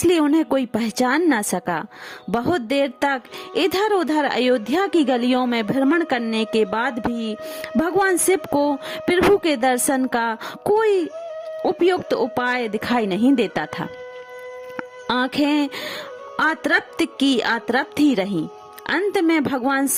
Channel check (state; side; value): identical; both; correlation 1.00